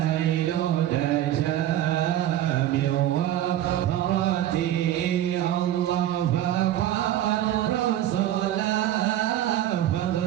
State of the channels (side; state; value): left; quieter; 12.5 dB